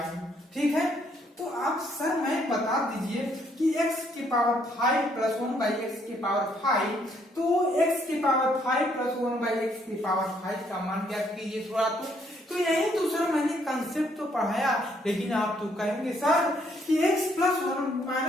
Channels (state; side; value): normal; both; correlation 0.69